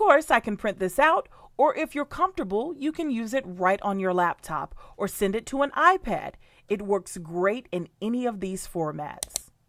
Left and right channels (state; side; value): identical; both; correlation 1.00